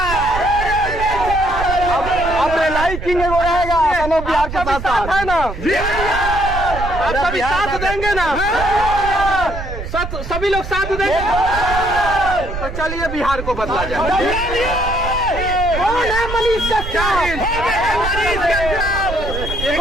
अब रेलाई किंग वो रहेगा, बिहार के साथ है ना, आप सभी साथ देंगे ना, सभी लोग साथ देंगे तो चलिए बिहार को बदला जाए। कौन है मनीष कश्यप?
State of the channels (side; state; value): right; noise; rumble, 7 dB below the sound